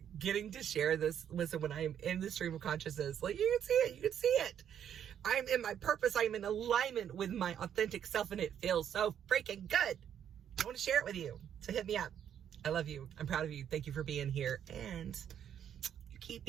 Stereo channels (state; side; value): quieter; left; 9.3 dB